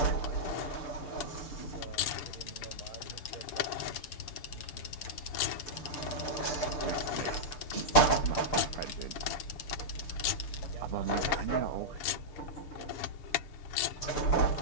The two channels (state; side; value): late; right; 6.7 ms